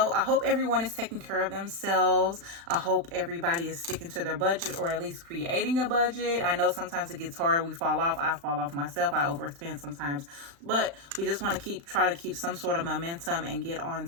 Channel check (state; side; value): late; left; 35 ms